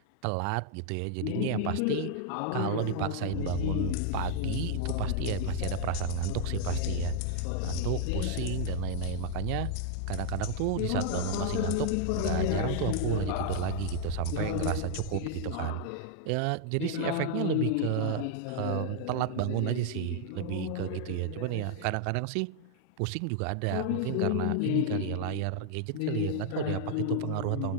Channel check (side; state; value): both; different; correlation -0.01